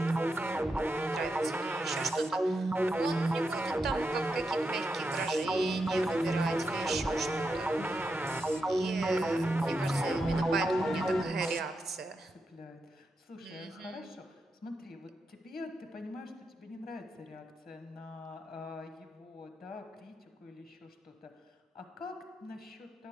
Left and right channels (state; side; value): normal; both; correlation 0.86